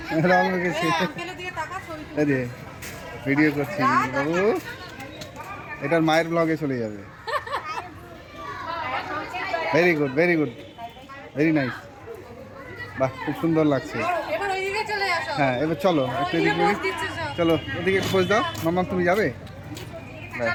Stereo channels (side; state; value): both; identical; correlation 1.00